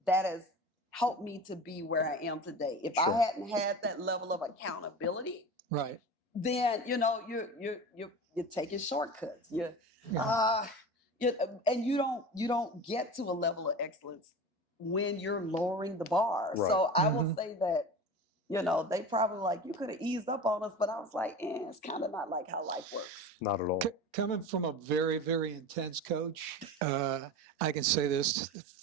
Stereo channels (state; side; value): normal; both; correlation 0.31